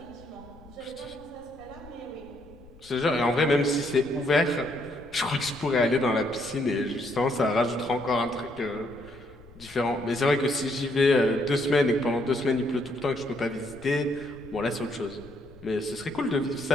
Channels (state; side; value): noise; left; rumble, 23 dB below the sound